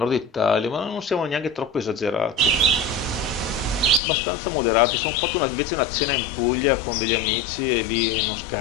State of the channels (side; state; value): right; drops out; at 4.0 s